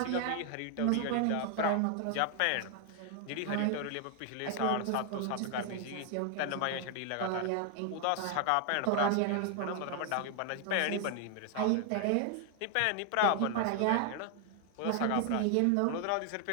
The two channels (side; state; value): both; different; correlation 0.00